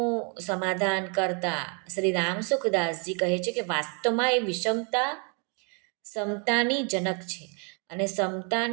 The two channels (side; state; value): left; quieter; 36.8 dB